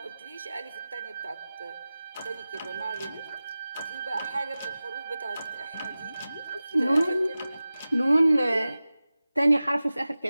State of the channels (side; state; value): both; inverted; correlation -0.96